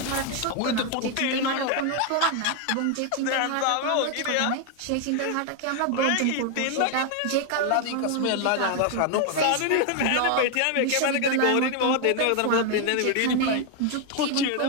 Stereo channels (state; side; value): different; both; correlation 0.00